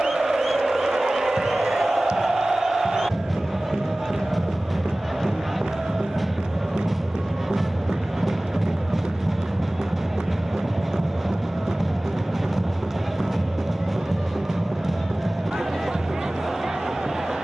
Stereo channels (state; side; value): normal; both; correlation 0.98